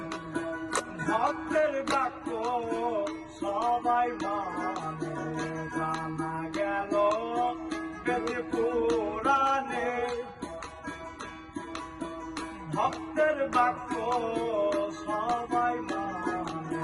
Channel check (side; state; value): both; identical; correlation 1.00